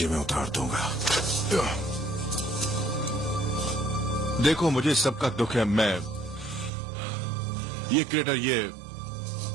में उतार दूंगा। देखो, मुझे सबका दुख है। मैं ये क्रिएटर,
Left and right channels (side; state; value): left; drops out; at 6.7 s